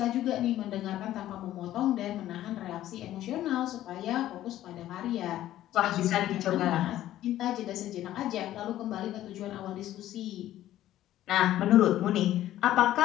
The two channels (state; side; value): quieter; right; 13.4 dB